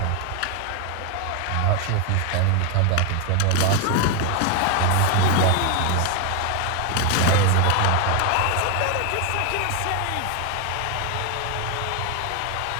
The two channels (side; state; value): both; different; correlation 0.01